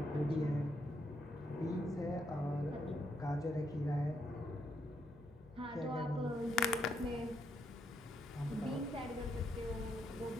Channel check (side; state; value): both; normal; correlation 0.77